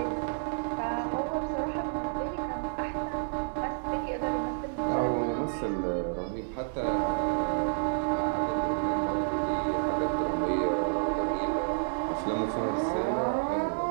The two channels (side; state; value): left; silent; 58 dB below the other